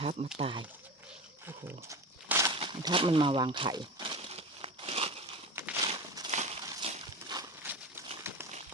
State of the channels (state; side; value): normal; both; correlation 0.27